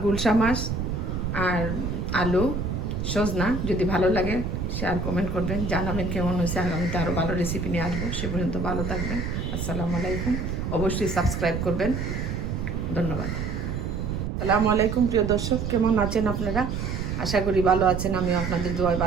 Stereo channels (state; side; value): noise; right; rumble, 3 dB below the sound